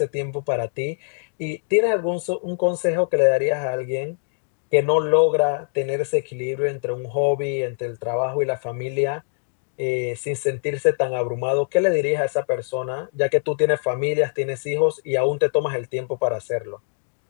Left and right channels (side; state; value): right; silent; digital silence